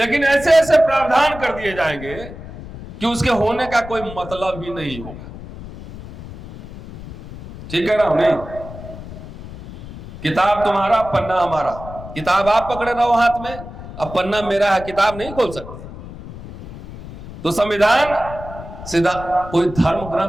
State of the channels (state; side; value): noise; left; rumble, 13 dB below the sound